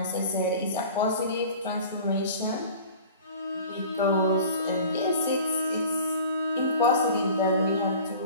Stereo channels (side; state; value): both; inverted; correlation -0.42